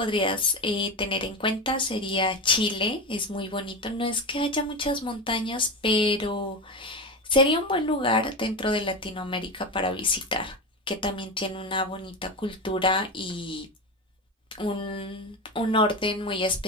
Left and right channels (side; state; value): both; normal; correlation 0.20